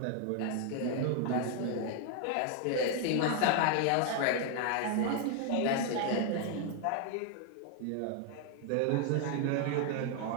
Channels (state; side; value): different; both; correlation 0.00